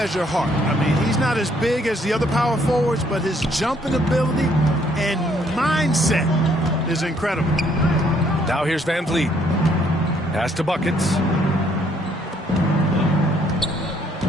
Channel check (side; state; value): both; normal; correlation 0.67